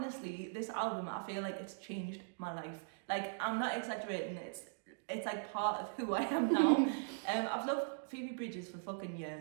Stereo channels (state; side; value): silent; left; digital silence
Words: this album, I feel like it's changed my life. Like, I'm not exaggerating. It's like part of who I am now. I've loved Phoebe Bridgers for fucking